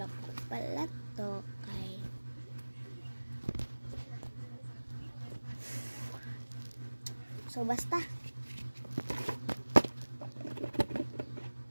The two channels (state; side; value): inverted; both; correlation -1.00